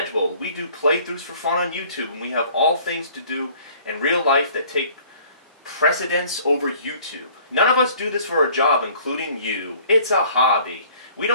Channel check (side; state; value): both; inverted; correlation -0.54